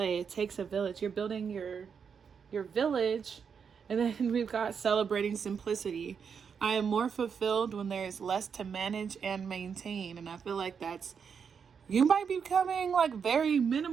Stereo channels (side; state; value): left; quieter; 6.6 dB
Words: It takes a village. You're building your village. And then we've got celebrating simplicity. I am more fulfilled when there is less to manage and maintain. And I feel like you might be becoming like very